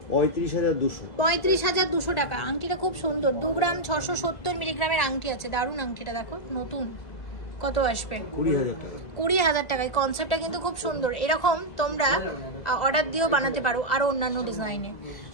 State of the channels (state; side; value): late; right; 2.0 ms